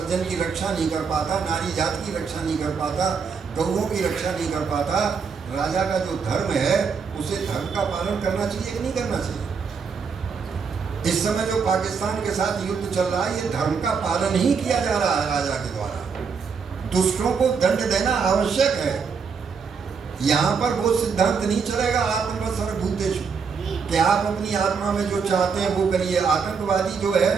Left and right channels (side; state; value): left; quieter; 5.7 dB